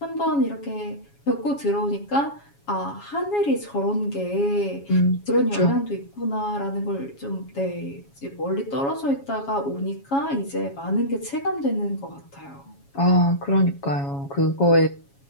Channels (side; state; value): right; late; 7.2 ms